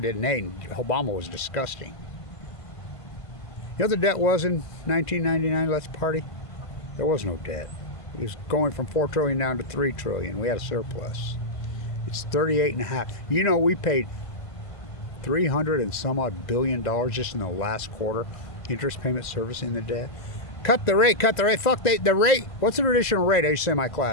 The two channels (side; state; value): right; late; 1.5 ms